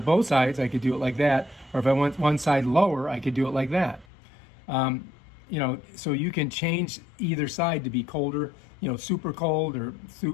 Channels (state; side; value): drops out; right; at 4.0 s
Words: both sides, I could do it like that. Or if I want one side lower, I could do it like that. You know, so you can change either side to be colder, you know, super cold or